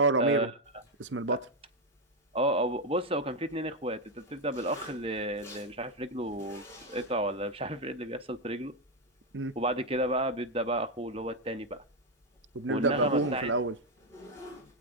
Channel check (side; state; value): both; normal; correlation 0.05